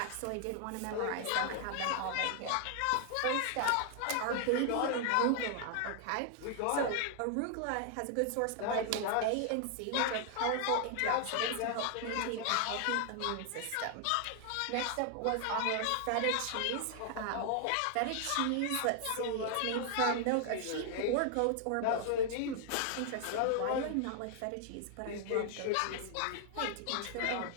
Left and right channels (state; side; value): different; both; correlation 0.00